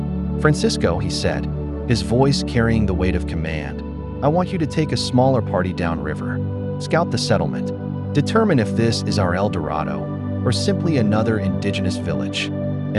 "Francisco," he said, his voice carrying the weight of command, "I want you to take a smaller party downriver. Scout the settlement. Determine if this is our El Dorado or simply another indigenous village.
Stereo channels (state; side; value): identical; both; correlation 1.00